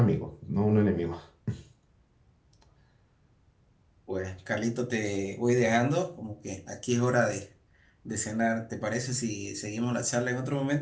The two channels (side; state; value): both; identical; correlation 1.00